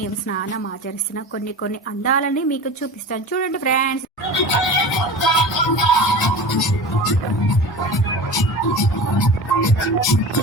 స్నానం ఆచరిస్తున్న కొన్ని అందాలని మీకు చూపిస్తాను. చూడండి ఫ్రెండ్స్.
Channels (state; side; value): normal; both; correlation 0.33